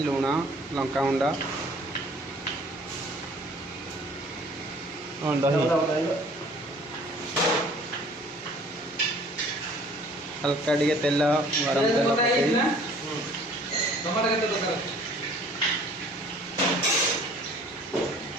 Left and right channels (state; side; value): normal; both; correlation 0.53